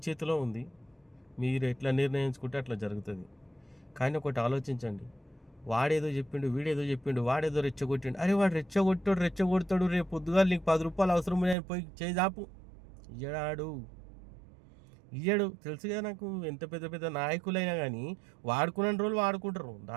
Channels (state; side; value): drops out; left; at 11.6 s